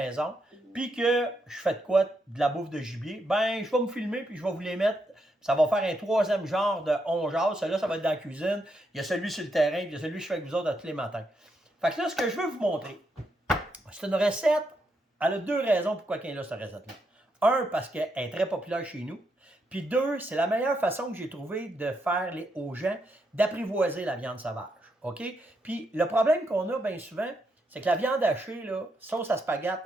puis que je fais de quoi? De la bouffe de gibier, ben, je vais me filmer, puis je vais vous les mettre. Ça va faire un troisième genre de on jase. Celui-là, ça va être dans la cuisine. Il y a celui sur le terrain, puis il y a celui que je fais avec vous autres tous les matins. Fait que là, ce que je veux vous montrer, c'est une recette. Elle a deux raisons pourquoi elle est là, cette recette-là. Un, parce qu'elle est très populaire chez nous. Puis deux, c'est la meilleure façon que j'ai trouvé de faire aux gens d'apprivoiser la viande sauvage. OK? Puis le problème qu'on a bien souvent, c'est que la viande hachée, là, sauce à spaghette,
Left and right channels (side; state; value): both; normal; correlation 0.80